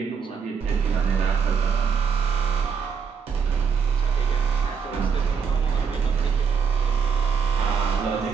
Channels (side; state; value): left; quieter; 6.3 dB